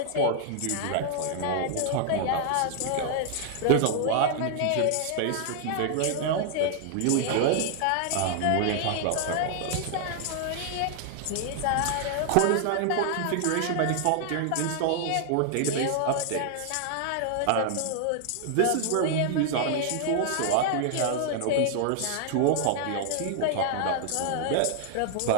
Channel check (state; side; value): different; both; correlation 0.00